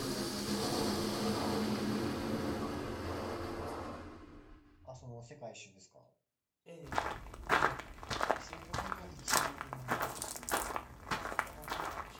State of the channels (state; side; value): identical; both; correlation 1.00